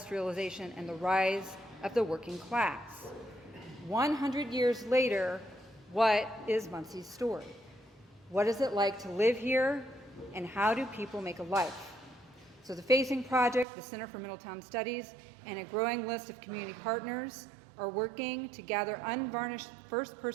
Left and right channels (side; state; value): left; drops out; at 13.7 s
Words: and the rise of the working class. 100 years later, what is Muncie's story? What is it like to live here, and how do people make a life? So the Facing Project, the Center for Middletown Studies, and a growing list of community partners are working to gather unvarnished